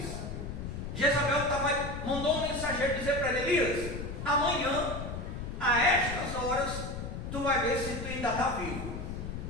Jezabel mandou um mensageiro dizer para ele: Elias, amanhã, a estas horas, tu vai ver se tu ainda está vivo,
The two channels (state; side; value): noise; left; rumble, 6 dB below the sound